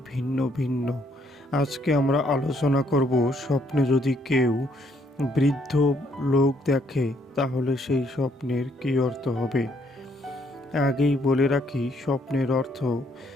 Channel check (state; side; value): normal; both; correlation 0.69